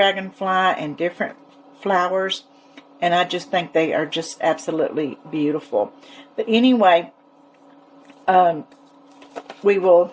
and different flowers, and I just think they are just absolutely beautiful. But anyway, I do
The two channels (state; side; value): identical; both; correlation 1.00